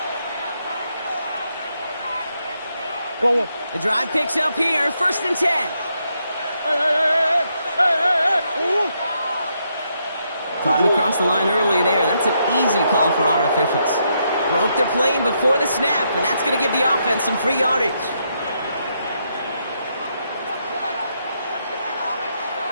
Go on. The drive picks up here, first and 10. Hey. Ooh. Caught him across the line early there. That's an easy call for our officials. Broke their plane before the snap, and that's going to give the offense some free yardage.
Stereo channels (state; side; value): inverted; both; correlation -0.78